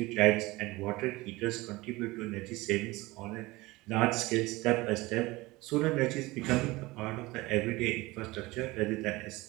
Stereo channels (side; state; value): left; quieter; 21.0 dB